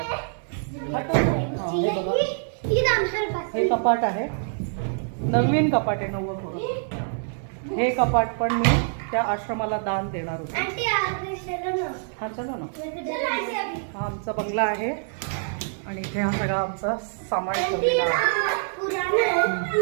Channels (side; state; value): left; silent; digital silence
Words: हे बघा हे कपाट आहे, नवीन कपाट आहे 90. हे कपाट पण मी त्या आश्रमाला दान देणार होते. हा चला ना. हा आमचा बंगला आहे आणि इथे हा सगळा आमचा सामान ठेवलेला आहे.